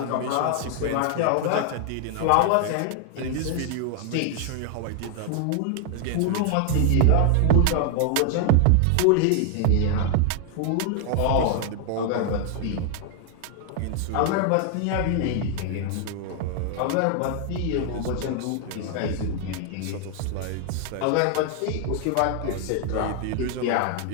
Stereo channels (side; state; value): both; different; correlation 0.00